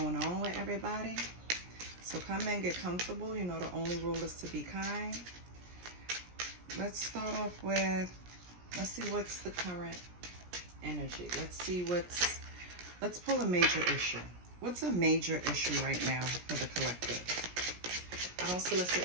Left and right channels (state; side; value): late; left; 17 ms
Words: on with everybody. So come in, get comfortable. You know the only rule is to be kind. Let's start off with, let's see what's the current energy. Let's pull a major issue. What's a major issue right now for the collective? I don't